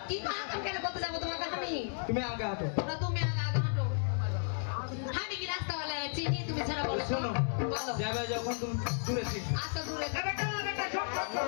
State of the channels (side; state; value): right; silent; digital silence